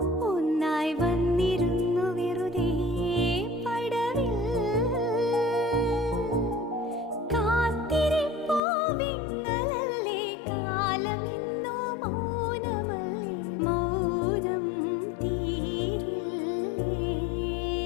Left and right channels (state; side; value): drops out; right; at 8.6 s